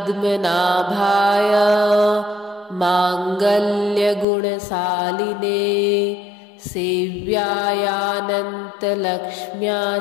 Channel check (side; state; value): right; drops out; at 4.2 s